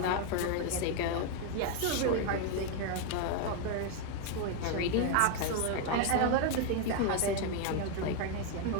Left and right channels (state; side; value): different; both; correlation 0.01